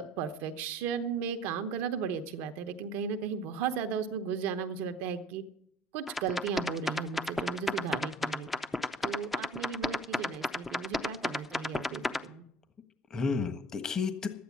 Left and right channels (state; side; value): normal; both; correlation 0.47